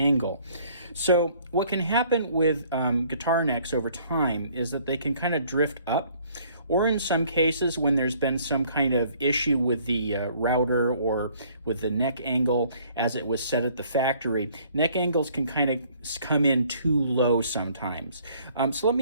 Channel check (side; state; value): both; inverted; correlation -0.60